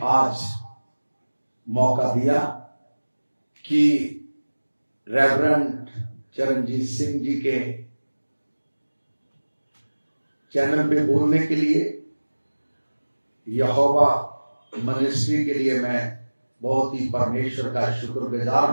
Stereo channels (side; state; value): both; inverted; correlation -1.00